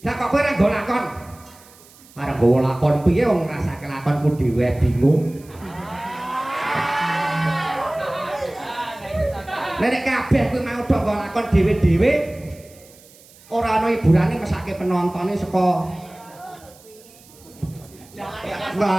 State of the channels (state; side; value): noise; right; hiss, 25 dB below the sound